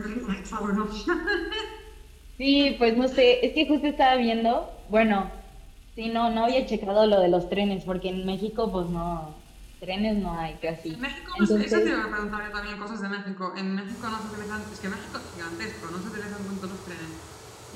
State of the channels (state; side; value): identical; both; correlation 1.00